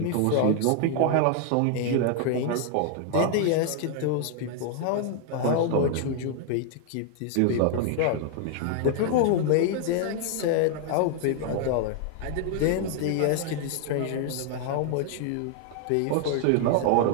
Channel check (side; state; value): both; different; correlation 0.00